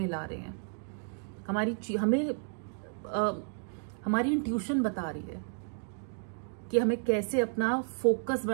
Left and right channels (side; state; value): left; silent; 56 dB below the other